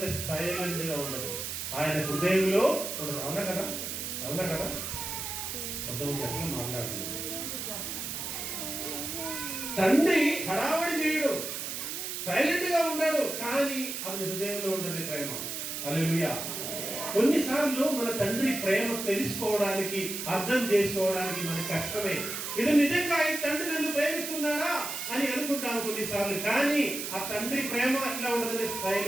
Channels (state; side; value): noise; right; hiss, 5 dB below the sound